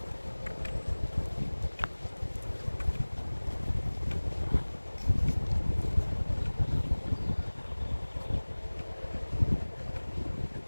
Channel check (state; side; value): inverted; both; correlation -1.00